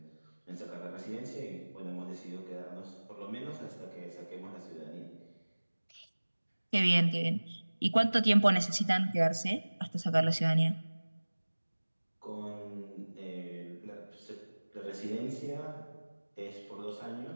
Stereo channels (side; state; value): both; inverted; correlation -1.00